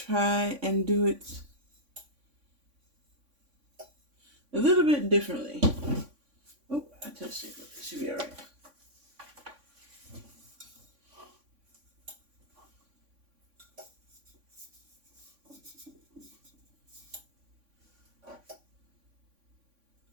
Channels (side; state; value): left; late; 3.5 ms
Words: and do it a little bit differently. Oh, I touched it. It should be all right.